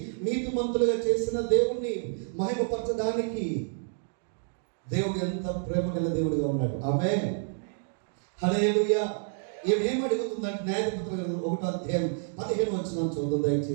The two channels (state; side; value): silent; left; digital silence